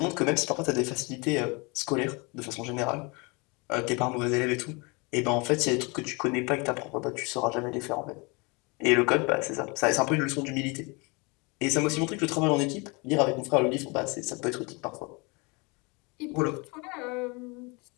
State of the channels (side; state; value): right; quieter; 28.7 dB